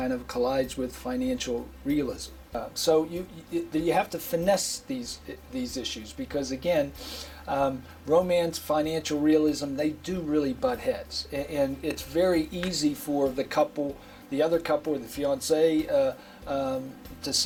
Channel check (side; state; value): both; identical; correlation 1.00